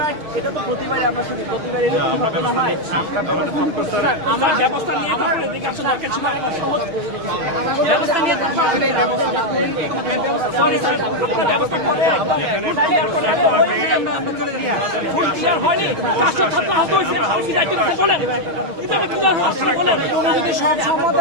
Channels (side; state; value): left; late; 6.3 ms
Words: এটা তো প্রতিবারে আমরা শুধু প্রতিবারে এরকম ঘটনা হয়। আমরা ব্যবস্থা নিয়ে আমার ব্যবস্থা নিয়ে সরি স্যার ব্যবস্থা করে ফুল ক্লিয়ার হয়নি, 500 ছাত্র আহত হয়েছে, আপনি দায়িত্ব নিতে বলেন এটা কি আপনি বলেন যদি সব